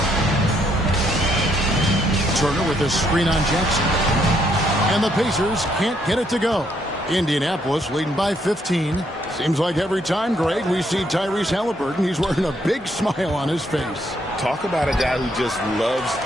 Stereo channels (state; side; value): normal; both; correlation 0.72